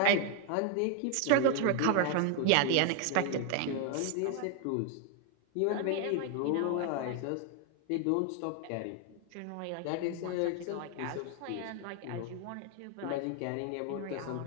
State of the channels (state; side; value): different; both; correlation 0.01